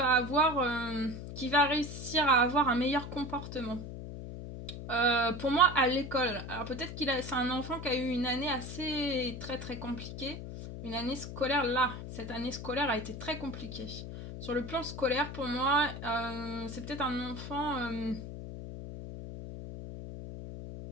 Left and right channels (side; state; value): left; noise; hum, 9 dB below the sound